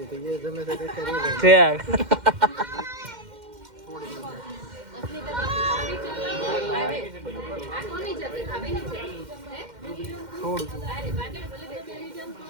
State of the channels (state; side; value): late; left; 2.1 ms